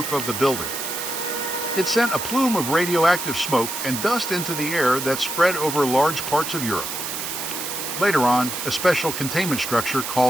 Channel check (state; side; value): noise; right; hiss, 5 dB below the sound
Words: of the building. It sent a plume of radioactive smoke and dust into the air that spread over large parts of Europe. Later on, a special containment structure